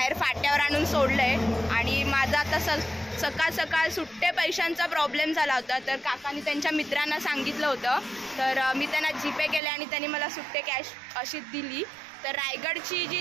फाट्यावर आणून सोडलंय। आणि माझा आता सकाळ सकाळ सुट्टे पैशांचा प्रॉब्लेम झाला होता, तर काकांनी त्यांच्या मित्रांना सांगितलं होतं, तर मी त्यांना जीपे केले आणि त्यांनी मला सुट्टे कॅश अशी दिली। तर रायगडची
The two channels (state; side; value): drops out; left; at 9.6 s